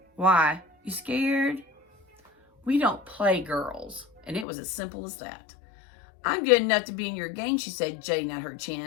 Why? You scared? We don't play, girls. And it was as simple as that. I'm good enough to be in your gang, she said, jutting out her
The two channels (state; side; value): drops out; right; at 4.5 s